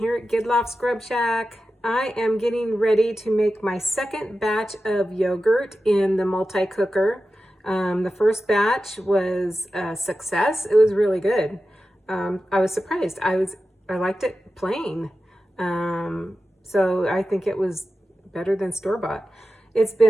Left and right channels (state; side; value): normal; both; correlation 0.93